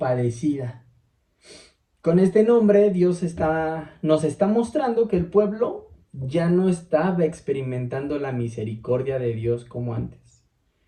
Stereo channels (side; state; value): both; identical; correlation 1.00